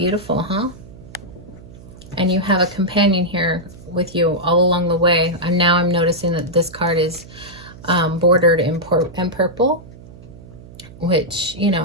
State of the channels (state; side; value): noise; right; hum, 19 dB below the sound